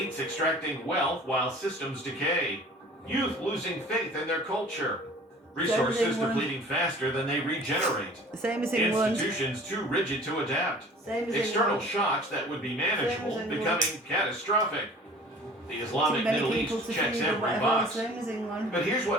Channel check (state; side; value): normal; both; correlation 0.47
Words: extracting wealth while systems decay. Youth losing faith in their culture. Resources depleting faster than they regenerate. Same as England. Institutions too rigid to adapt. Same as External England. shocks that would be manageable England. becoming catastrophic. The Too Islamic many Middle people East to checks feed or every whatever. box. Same as England. But here's